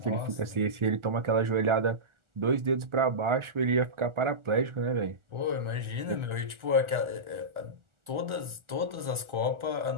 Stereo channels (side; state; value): left; late; 1.4 ms